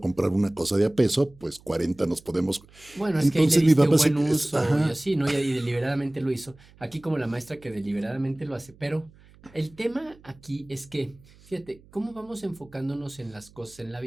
comprar una cosa de a peso, pues 40 nos podemos. Bueno, es que ahí le Entonces mi diste un papá buen uso y ajá, así, ¿no? Y deliberadamente lo hizo. Aquí como la maestra que deliberadamente lo hace. Pero el tema aquí es que, fíjate, ¿cómo vamos enfocándonos en las cosas en la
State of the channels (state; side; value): noise; right; hum, 26 dB below the sound